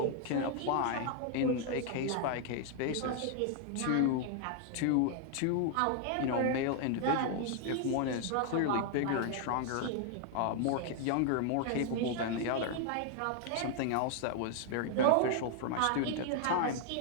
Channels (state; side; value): different; both; correlation 0.00